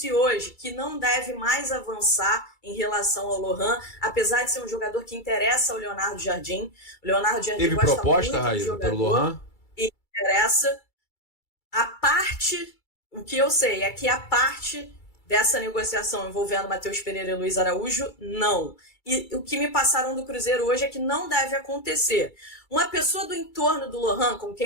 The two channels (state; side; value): late; right; 2.3 ms